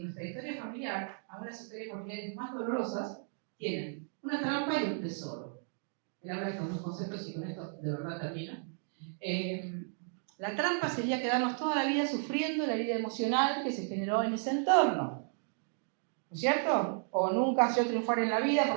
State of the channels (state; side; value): silent; left; 55 dB below the other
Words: nuestra historia familiar, aún las historias familiares más dolorosas, tienen una trampa y un tesoro. Él habla de estos dos conceptos y con esto de verdad termino. La trampa sería quedarnos toda la vida sufriendo la herida emocional que se generó en ese entorno. ¿No es cierto? O nunca yo triunfar en la vida